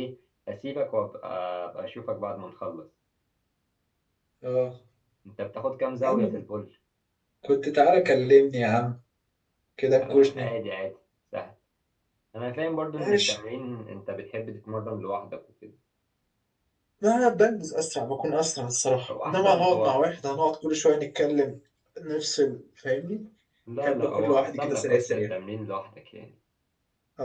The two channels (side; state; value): both; identical; correlation 1.00